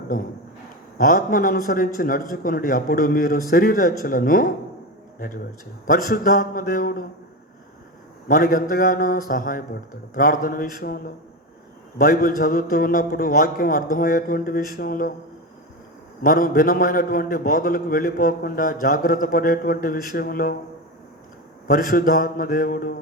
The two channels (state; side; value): normal; both; correlation 0.18